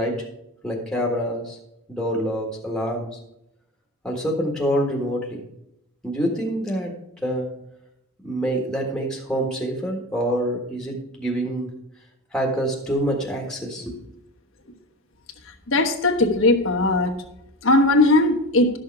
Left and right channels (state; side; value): normal; both; correlation 0.30